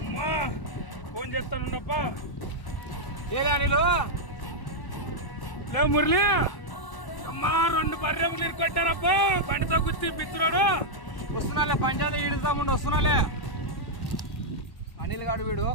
అమ్మా ఫోన్ చేస్తానున్నప్పా. ఏలే నీళ్ళు లేవు మురళి. అమ్మా 2 బర్రెంకులు ఇరుకొట్టారప్పా బండితో గుర్తి బిత్తురాడు. వస్తున్నాలే, పంచాయతీ ఈడుతాముండి వస్తున్నాలే. అనిల్ గాడు వీడు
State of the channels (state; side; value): late; right; 1.0 ms